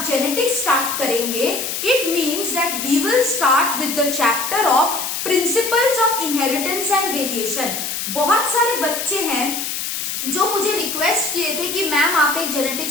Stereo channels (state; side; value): noise; left; hiss, 4 dB below the sound